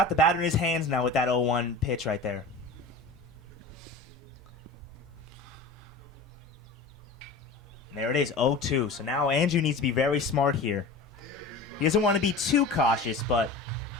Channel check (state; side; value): quieter; right; 3.5 dB